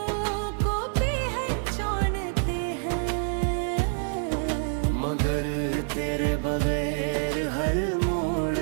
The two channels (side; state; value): left; silent; 60 dB below the other